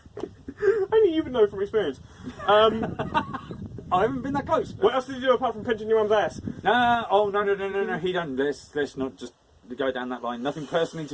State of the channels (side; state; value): both; identical; correlation 1.00